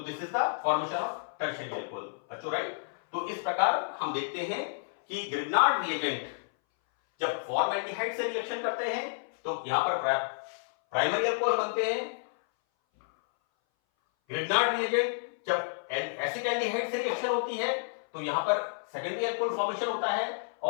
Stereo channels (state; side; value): silent; right; 58 dB below the other